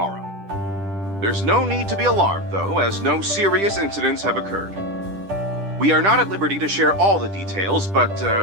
There's no need to be alarmed, though, as no serious incidents have occurred. We are not at liberty to share all the details, but,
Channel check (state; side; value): late; left; 10 ms